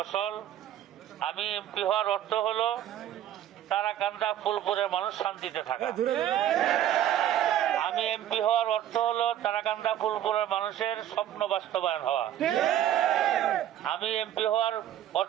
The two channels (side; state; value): left; quieter; 11.5 dB